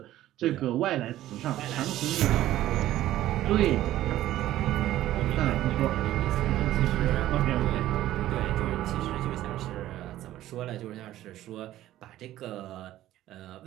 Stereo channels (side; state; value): left; quieter; 14.1 dB